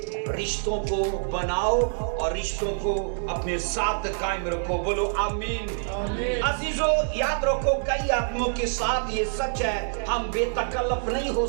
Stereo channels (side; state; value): left; silent; digital silence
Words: रिश्तों को बनाओ और रिश्तों को अपने साथ कायम रखो। बोलो आमीन। अजीजों, याद रखो, कई आदमियों के साथ ये सच है, हम बेतकल्लफ नहीं हो